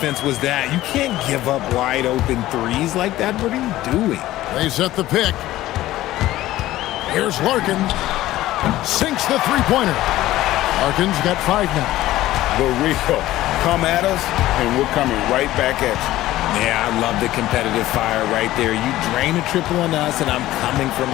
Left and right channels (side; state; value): right; quieter; 15.5 dB